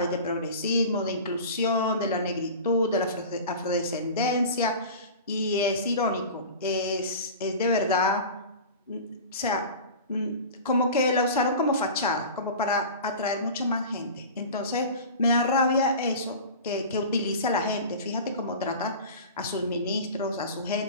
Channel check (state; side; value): inverted; both; correlation -0.35